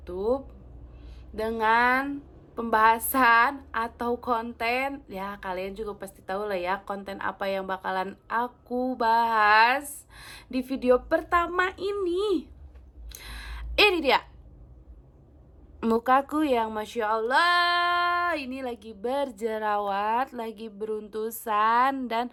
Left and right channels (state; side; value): identical; both; correlation 1.00